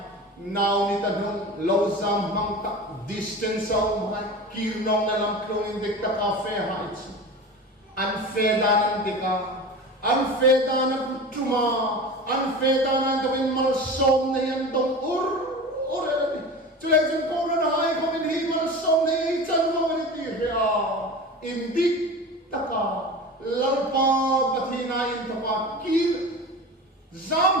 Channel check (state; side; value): normal; both; correlation 0.32